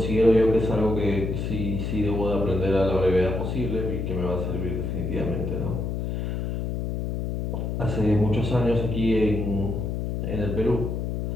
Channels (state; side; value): noise; left; hum, 2 dB below the sound